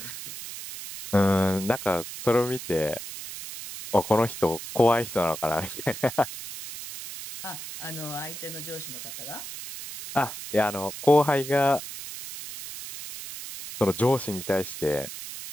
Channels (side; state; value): right; noise; hiss, 10 dB below the sound